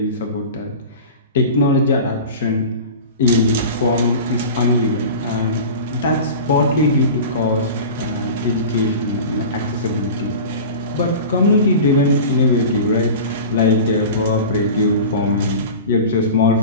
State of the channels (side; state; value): both; inverted; correlation -0.34